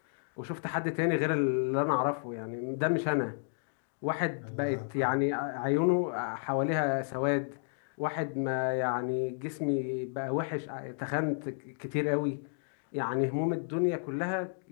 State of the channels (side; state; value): right; silent; digital silence